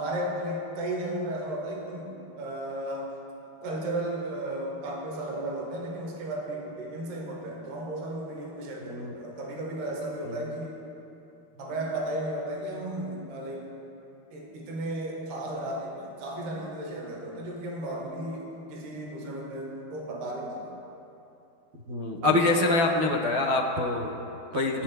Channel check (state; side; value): late; left; 12 ms